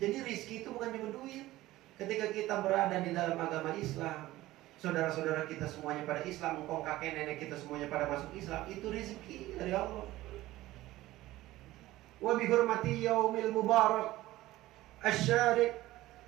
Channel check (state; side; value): quieter; left; 16.8 dB